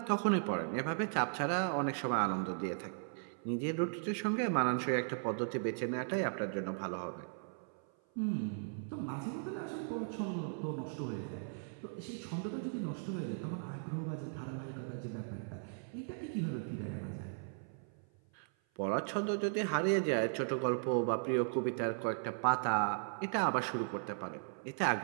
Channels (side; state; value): left; silent; 53 dB below the other